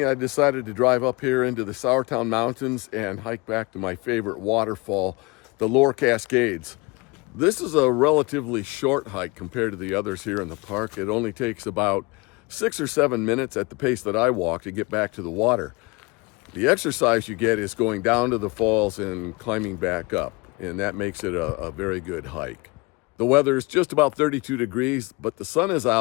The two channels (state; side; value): quieter; right; 26.2 dB